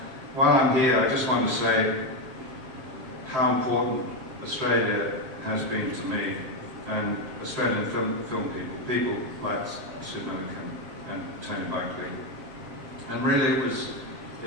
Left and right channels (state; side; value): late; left; 7.8 ms